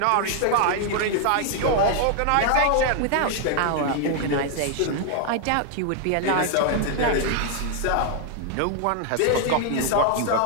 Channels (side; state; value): both; different; correlation 0.00